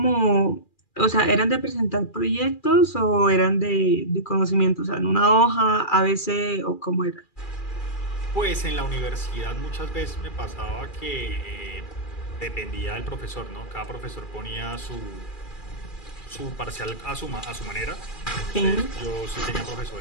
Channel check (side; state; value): right; late; 2.4 ms